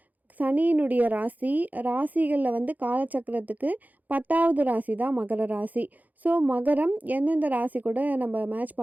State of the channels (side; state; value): left; late; 0.081 ms